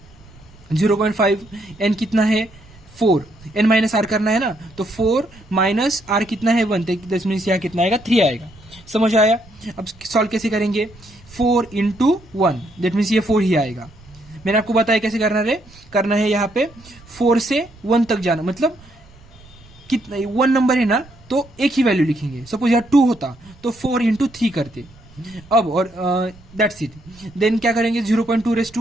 0.5, एन कितना है 4, एन माइनस आर करना है ना, तो 4 माइनस आर कितना है 1, दस मीन्स यहाँ कितना आएगा 3 आएगा। समझ आया। अब सॉल्व कैसे करेंगे, 4 इंटू 1, दैट मीन्स ये 4 ही आएगा। मैंने आपको बताया कैसे करना है यहाँ पे 4 से 1 तक जाना, मतलब कितना 1 नंबर है ना, तो एक ही वैल्यू लिखेंगे। सपोज यहाँ 2 होता तो 4 इंटू 3 करते। अब और दैट्स इट। देन क्या करेंगे 0.2 रेस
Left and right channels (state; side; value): noise; right; rumble, 24 dB below the sound